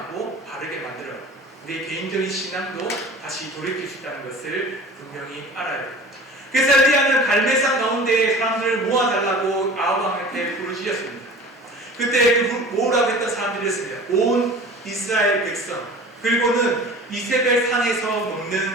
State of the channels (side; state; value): both; normal; correlation 0.41